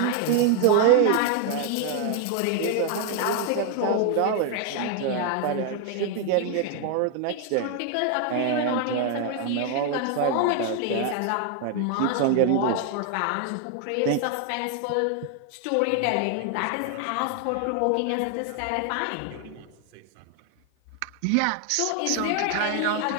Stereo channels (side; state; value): both; different; correlation 0.00